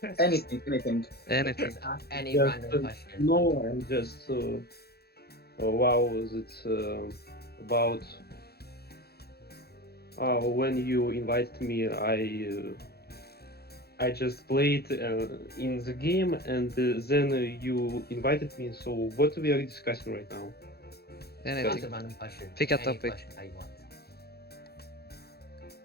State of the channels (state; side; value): late; right; 0.46 ms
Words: Anything. Anything. Just ask any Just, random question. No, and just wow, was it about when you invited me? I just played in the game, and then you invited me. So what we are discussing right now? Ask a Anything. random question. Pick a Any topic. question that you want.